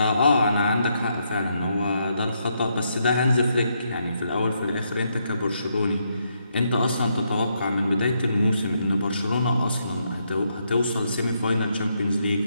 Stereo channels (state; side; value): inverted; both; correlation -0.78